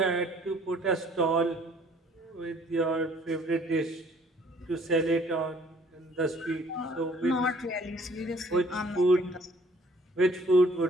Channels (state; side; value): normal; both; correlation 0.58